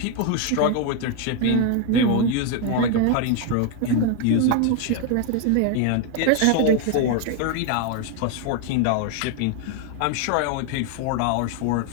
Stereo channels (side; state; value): both; different; correlation 0.01